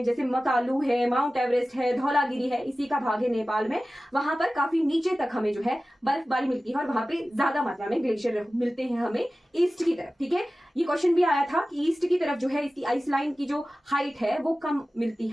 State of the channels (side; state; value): both; normal; correlation 0.96